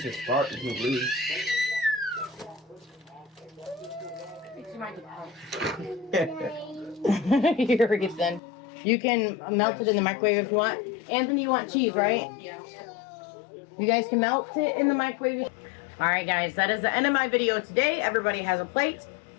just fart and he'll leave. Here it then. You can melt it in the microwave if you want. Anthony, you want cheese, right? Yeah. You guys can melt it in the microwave. Alright guys, that is the end of my video today. Everybody has a plate.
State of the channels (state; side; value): drops out; right; at 8.4 s